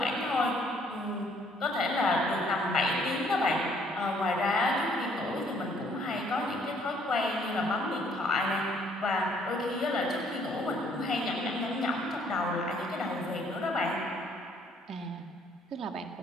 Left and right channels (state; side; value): normal; both; correlation 0.64